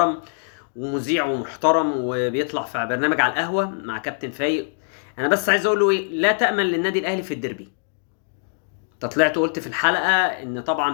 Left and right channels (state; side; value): silent; right; digital silence